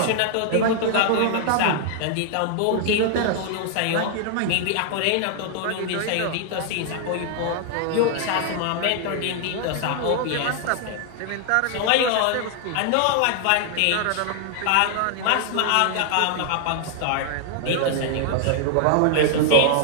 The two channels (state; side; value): different; both; correlation 0.00